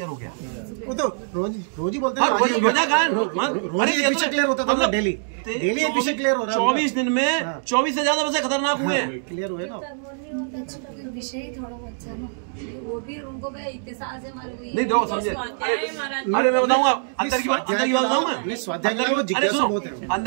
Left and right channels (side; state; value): left; silent; digital silence